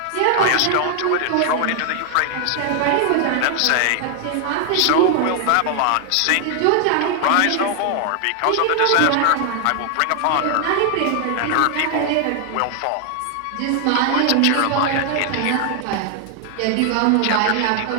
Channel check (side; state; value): both; different; correlation 0.00